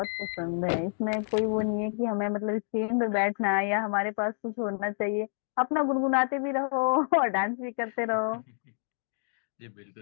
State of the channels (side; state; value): right; silent; digital silence